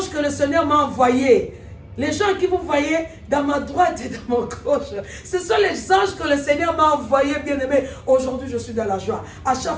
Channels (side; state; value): both; identical; correlation 1.00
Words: que le Seigneur m'a envoyés. Les gens que vous voyez dans ma droite et dans ma gauche, ce sont les anges que le Seigneur m'a envoyés, bien aimé. Aujourd'hui, je suis dans la joie. À